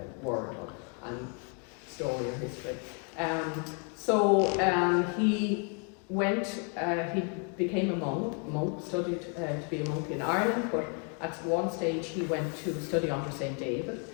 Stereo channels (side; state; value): right; quieter; 38.9 dB